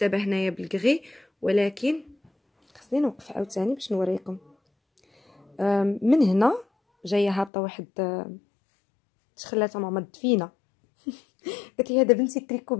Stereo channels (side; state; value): right; drops out; at 7.5 s